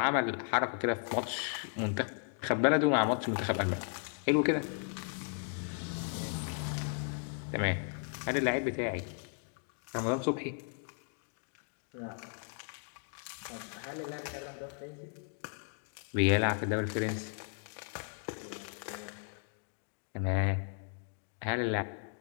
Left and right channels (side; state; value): right; silent; 54 dB below the other